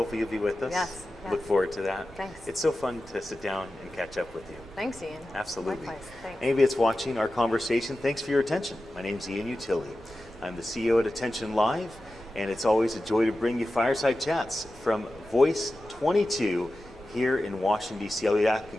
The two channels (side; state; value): both; normal; correlation 0.93